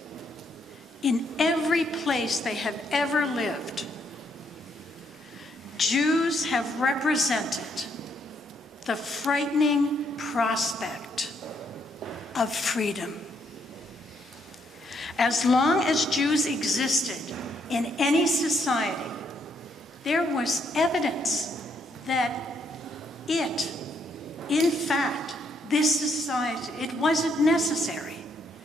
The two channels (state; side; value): normal; both; correlation 0.73